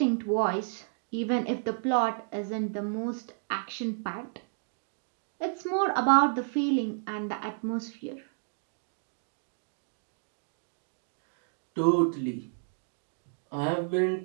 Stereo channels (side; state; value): left; silent; digital silence